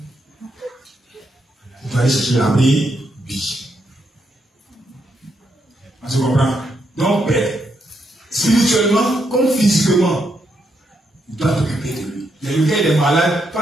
Tu dois aller chercher la brebis. Tu comprends? Donc, Père, spirituellement comme physiquement, tu dois t'occuper de lui. Le gars il est malade,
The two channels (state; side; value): normal; both; correlation 0.79